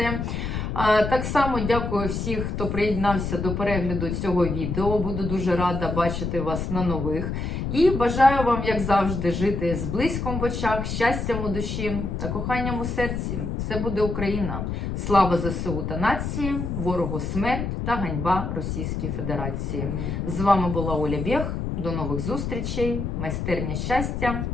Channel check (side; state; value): left; noise; rumble, 3 dB below the sound